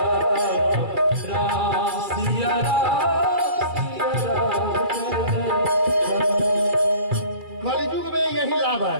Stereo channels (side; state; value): left; late; 2.3 ms